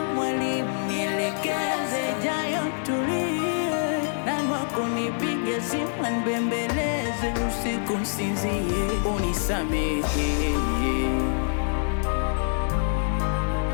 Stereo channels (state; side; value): silent; right; digital silence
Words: mwalimu nielekeze jayo tulie. Nani wako nipige simu nibembeleze usiku nsinzie. Unisamehe,